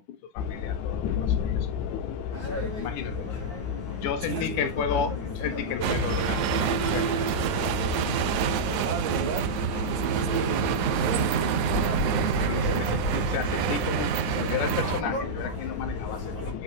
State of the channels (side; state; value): right; late; 9.7 ms